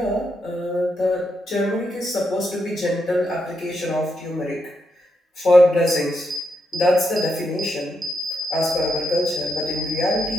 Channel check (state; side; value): normal; both; correlation 0.81